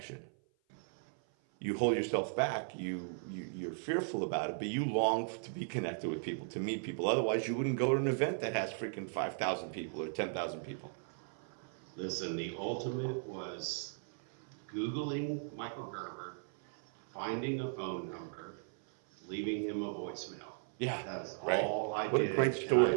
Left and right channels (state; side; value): silent; left; 53 dB below the other